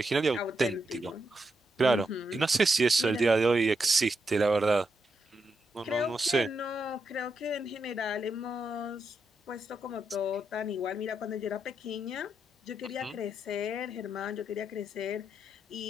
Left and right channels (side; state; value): both; normal; correlation 0.82